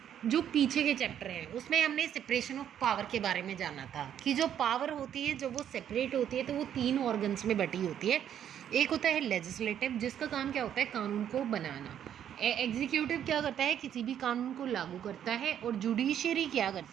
जो पीछे के चैप्टर हैं उसमें हमने सेपरेशन ऑफ पावर के बारे में जाना था कि जो पावर होती है जब वो सेपरेट होती है तो वो 3 ऑर्गन्स में बटी होती है। एक होता है लेजिस्लेटिव, जिसका काम क्या होता है कानून को बनाना। एग्जीक्यूटिव क्या करता है किसी भी कानून को लागू करता है। और जुडिशियरी क्या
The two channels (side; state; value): left; quieter; 9.8 dB